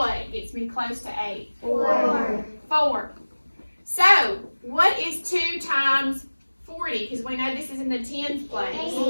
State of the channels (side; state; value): both; inverted; correlation -1.00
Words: gets me close to 8? 4. 4. So, what is 2 times 40? Because we know this is in the tens place.